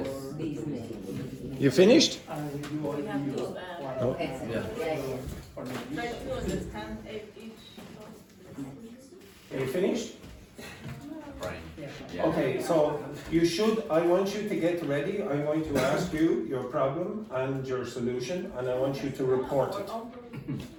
Disney. You finished? and you We have to Okay. Yeah. try to understand each. Are you finished? Yeah. Okay, so I want you to get ready. I'm going to ask you your problem and your solution, and I want you to report it.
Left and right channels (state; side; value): identical; both; correlation 1.00